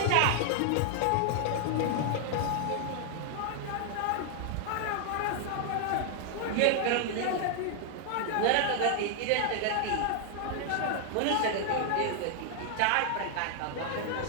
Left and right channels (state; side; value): different; both; correlation 0.00